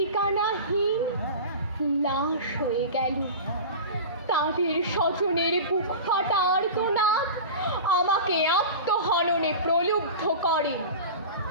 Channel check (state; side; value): inverted; both; correlation -0.31